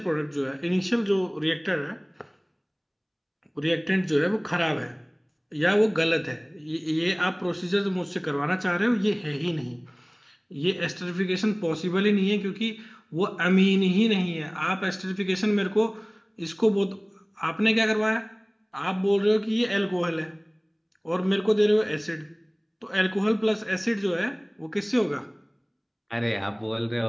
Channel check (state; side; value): identical; both; correlation 1.00